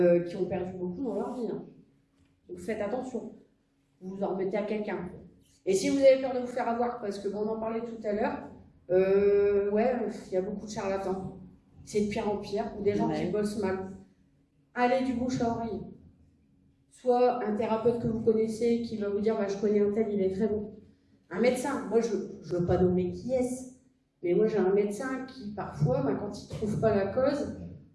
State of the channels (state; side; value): identical; both; correlation 1.00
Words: qui ont perdu beaucoup dans leur vie. Hein. Donc faites attention. Vous vous en remettez à quelqu'un. Et si vous avez peur de vous faire avoir, parce que on en parlait tout à l'heure, il y a beaucoup de charlatans. C'est de pire en pire, ou des gens qui bossent mal. Allez du bouche à oreille. soit un thérapeute que vous connaissez qui va vous dire bah, je connais un tel, il est très bon. Un médecin, moi je ne veux pas nommer qui est-ce, mais moi j'ai un médecin qui parfois, bah, quand il ne trouve pas la cause,